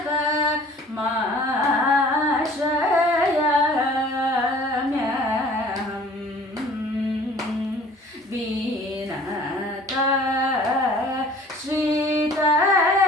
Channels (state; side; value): normal; both; correlation 0.50